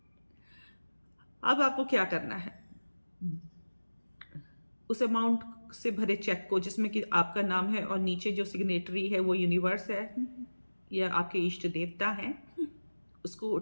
अब आपको क्या करना है, उस अमाउंट से भरे चेक को जिसमें कि आपका नाम है और नीचे जो सिग्नेटरी है वो यूनिवर्स है या आपके इष्ट देवता हैं, उसको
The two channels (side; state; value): both; inverted; correlation -1.00